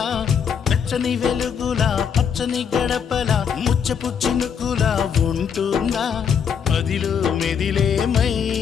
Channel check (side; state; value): right; quieter; 7.3 dB